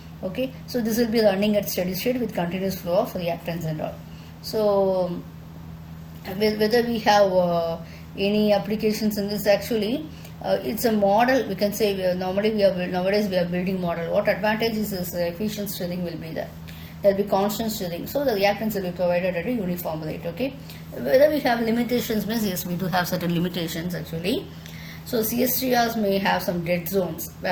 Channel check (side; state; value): both; identical; correlation 1.00